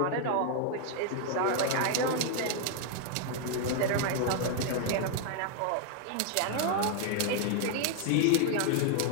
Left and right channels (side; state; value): both; different; correlation 0.00